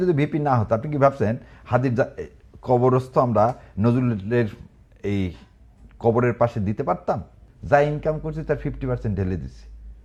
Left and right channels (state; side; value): identical; both; correlation 1.00